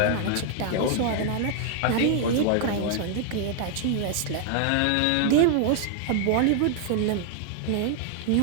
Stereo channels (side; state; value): both; different; correlation 0.00